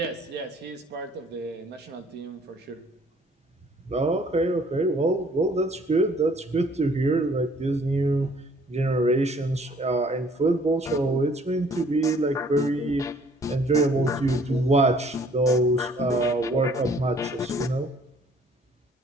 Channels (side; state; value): both; normal; correlation 0.58